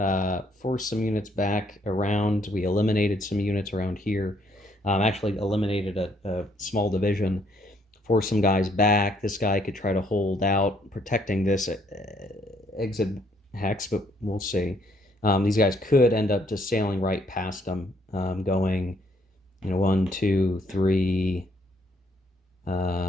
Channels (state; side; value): normal; both; correlation 0.68